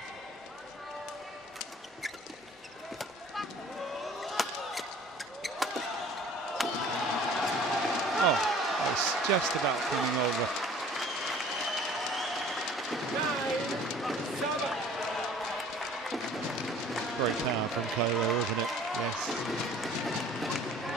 Oh, that was just about coming over. Great power from Kuala, wasn't it? Yes.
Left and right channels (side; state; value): both; normal; correlation 0.50